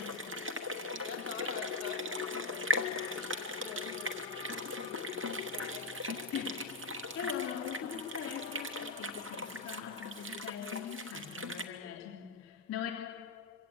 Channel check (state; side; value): quieter; right; 3.2 dB